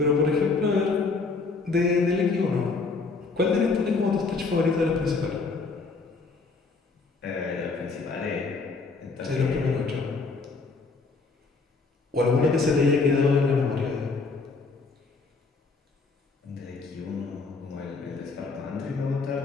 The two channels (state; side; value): quieter; right; 4.2 dB